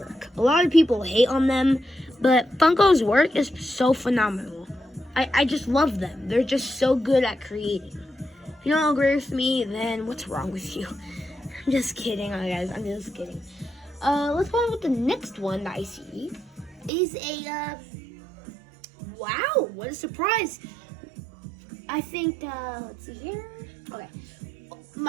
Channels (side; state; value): left; drops out; at 16.9 s